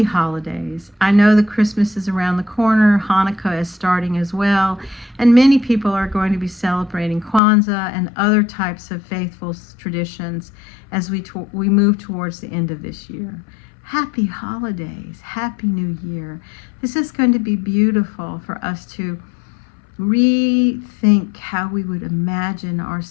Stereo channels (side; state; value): right; drops out; at 7.4 s